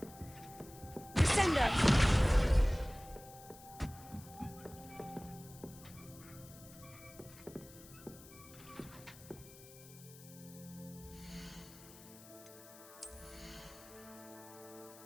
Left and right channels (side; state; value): left; noise; hiss, 19 dB below the sound